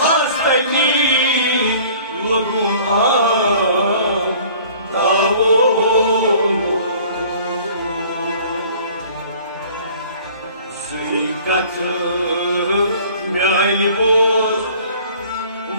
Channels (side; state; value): both; inverted; correlation -0.50